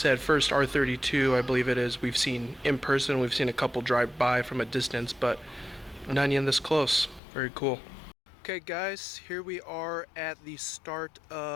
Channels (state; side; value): drops out; right; at 7.2 s